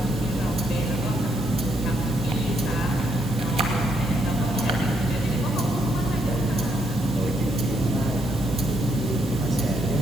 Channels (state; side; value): noise; left; hum, 19 dB below the sound